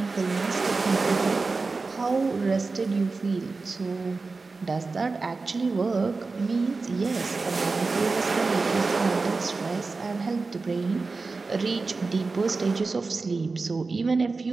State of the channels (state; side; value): quieter; left; 3.9 dB